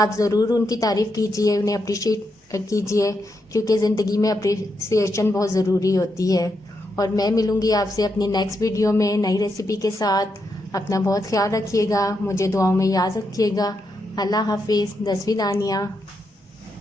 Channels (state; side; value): normal; both; correlation 0.83